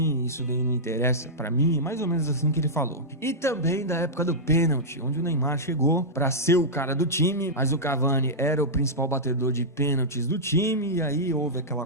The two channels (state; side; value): normal; both; correlation -0.09